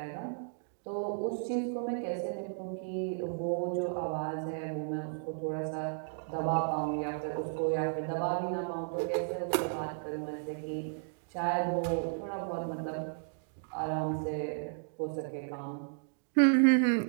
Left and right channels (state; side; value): silent; left; digital silence